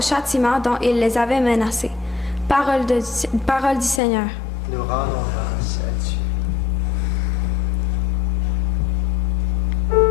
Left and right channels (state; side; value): drops out; right; at 4.0 s